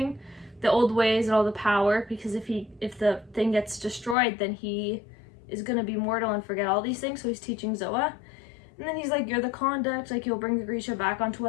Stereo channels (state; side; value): drops out; right; at 4.2 s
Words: the old ways and all the power, because if the thing gets destroyed, then he is gonna be mortal and forget all these things. So he's teaching Zoa, and then he's like, you're the conduct, like you'll bring the Grisha back onto